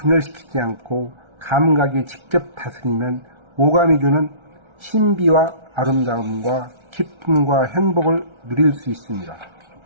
않고 감각이 직접 다스리면 오감이 주는 신비와 아름다움과 기쁨과 행복을 누릴 수 있습니다.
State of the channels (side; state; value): left; late; 1.3 ms